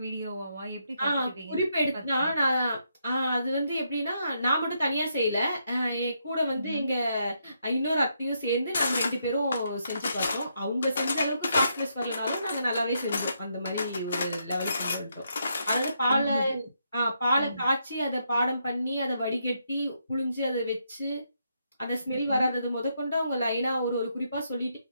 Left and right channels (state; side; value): inverted; both; correlation -0.78